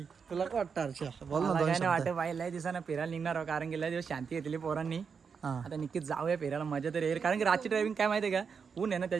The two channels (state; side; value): quieter; left; 6.0 dB